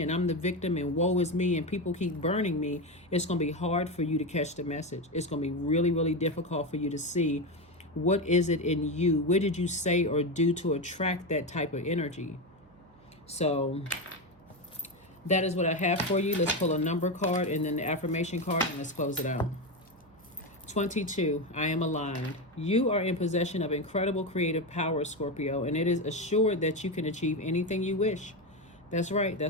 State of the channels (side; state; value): right; noise; hum, 29 dB below the sound